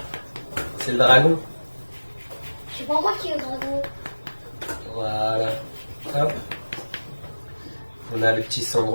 C'est le dragon. Je sais pas moi qui est le dragon. Voilà. Hop. On a le petit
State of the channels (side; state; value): both; inverted; correlation -1.00